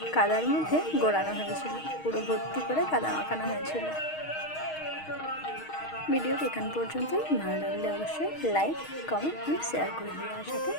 কাদার মধ্যে গোড়ানো হয়েছিল, পুরো ভর্তি করে কাদা মাখানো হয়েছিল। ভিডিওর এখান পর্যন্তই। ভালো লাগলে অবশ্যই লাইক, কমেন্ট অ্যান্ড শেয়ার করে দিও, আর সাথে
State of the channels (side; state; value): right; late; 6.4 ms